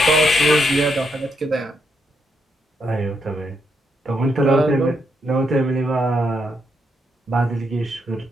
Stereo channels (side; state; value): both; normal; correlation 0.78